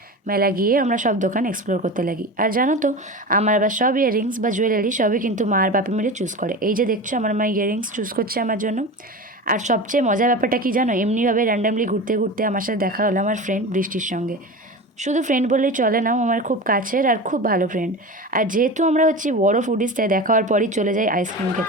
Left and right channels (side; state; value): both; normal; correlation 0.29